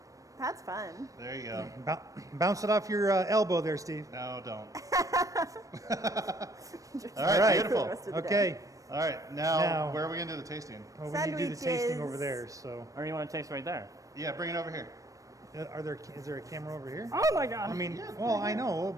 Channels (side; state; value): left; late; 0.16 ms